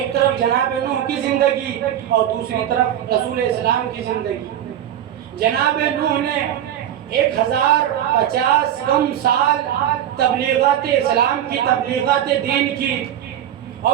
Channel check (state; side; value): quieter; left; 10.9 dB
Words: طرف جناب نوح کی زندگی اور دوسری طرف رسول اسلام کی زندگی۔ جناب نوح نے 1050 کم سال تبلیغات اسلام کی، تبلیغات دین کی،